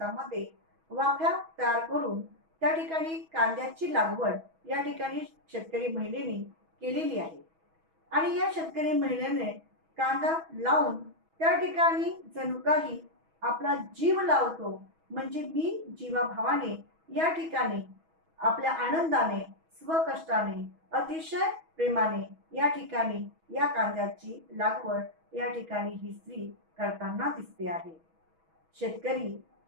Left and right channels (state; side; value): late; left; 6.2 ms